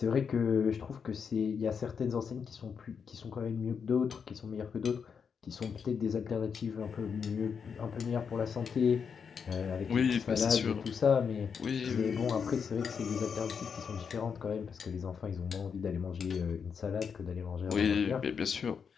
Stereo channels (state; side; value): quieter; right; 6.5 dB